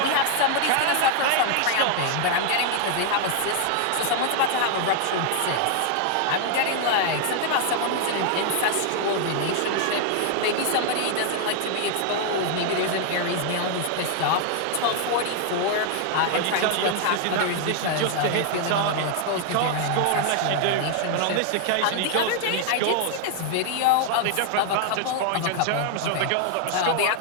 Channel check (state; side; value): different; both; correlation 0.00